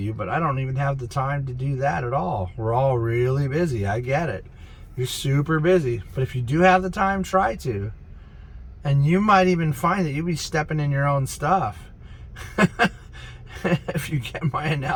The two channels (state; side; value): identical; both; correlation 1.00